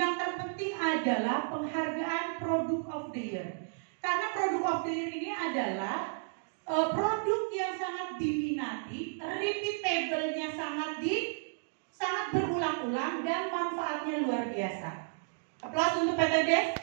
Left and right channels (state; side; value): silent; left; digital silence